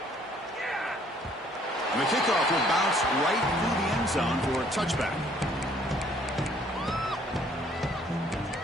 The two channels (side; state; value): both; normal; correlation 0.61